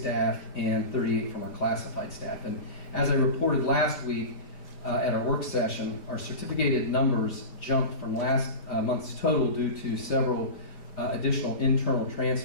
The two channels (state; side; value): late; right; 5.1 ms